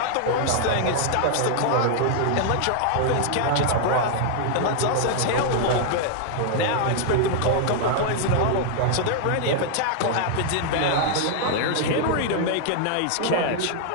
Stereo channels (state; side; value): different; both; correlation 0.00